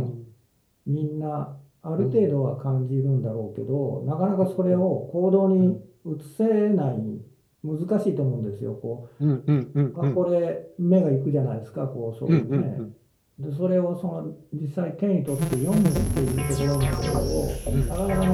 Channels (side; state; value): both; identical; correlation 1.00